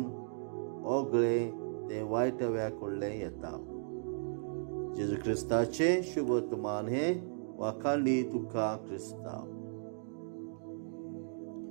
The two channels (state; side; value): silent; left; digital silence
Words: ओगळें तें वायटव्या कडलें येता. जेजू क्रिस्ताचें शुभ वर्तमान हें वाखाणली तुका क्रिस्तांव.